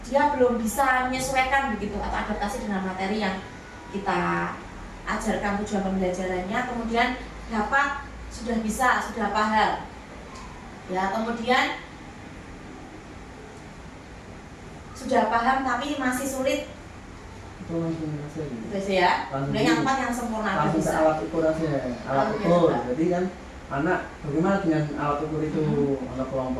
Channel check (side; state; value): both; identical; correlation 1.00